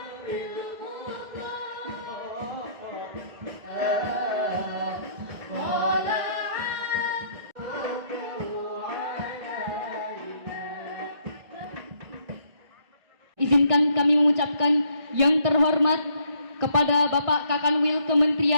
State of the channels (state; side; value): late; left; 1.6 ms